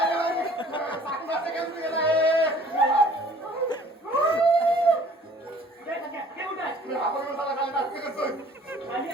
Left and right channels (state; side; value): normal; both; correlation 0.53